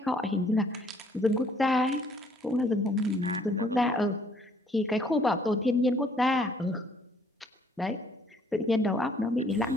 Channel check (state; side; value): normal; both; correlation 0.62